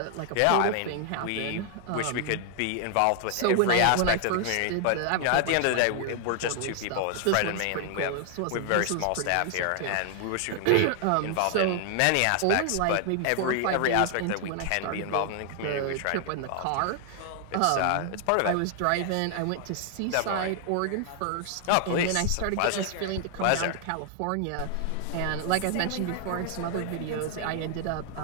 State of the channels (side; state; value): both; different; correlation 0.00